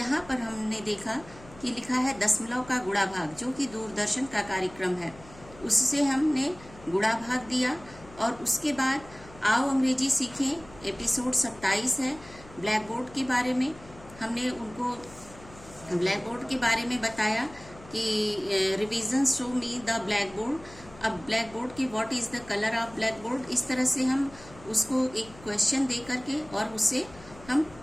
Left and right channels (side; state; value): left; noise; hum, 20 dB below the sound